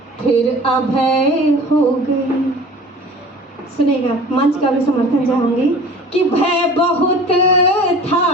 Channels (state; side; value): normal; both; correlation 0.42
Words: फिर अभय हो गई, सुनेगा, मंच का भी समर्थन चाहूंगी। कि भय बहुत